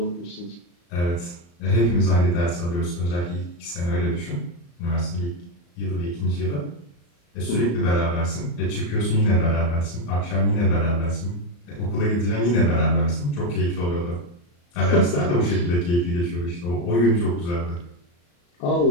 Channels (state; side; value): late; right; 34 ms